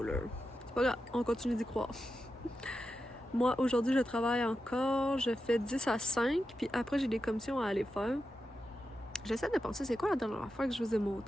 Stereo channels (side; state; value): both; normal; correlation 0.90